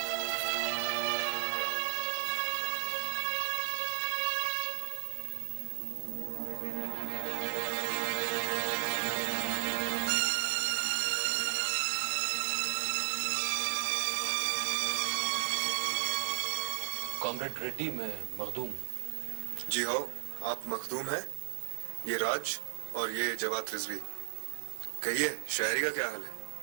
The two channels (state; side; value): silent; left; digital silence